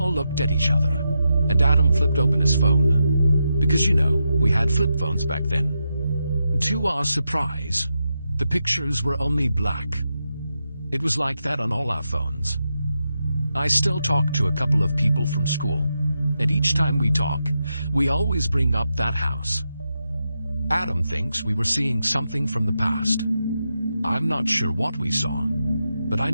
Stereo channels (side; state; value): both; inverted; correlation -0.87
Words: looked at each other, and Adam flipped open his phone. Because we had flip phones back then. To our surprise, the pictures were only black. It was like that on all our phones. I still talk to a couple of people from school, and each time we talk, we always bring up that house. Adam thinks we were seeing something from the past. I'm not sure what we saw, but I